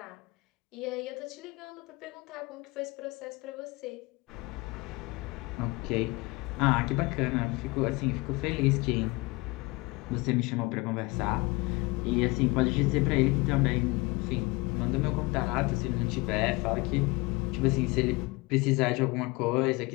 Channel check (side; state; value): right; quieter; 24.2 dB